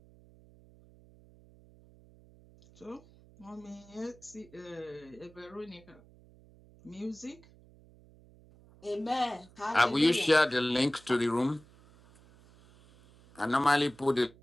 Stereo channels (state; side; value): noise; right; hum, 25 dB below the sound